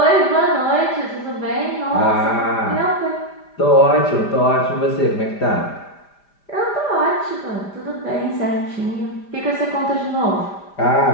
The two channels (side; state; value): right; late; 5.0 ms